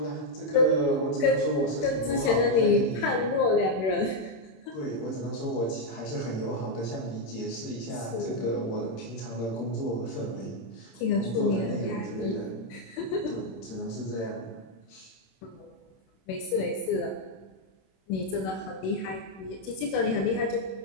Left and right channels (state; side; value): late; right; 26 ms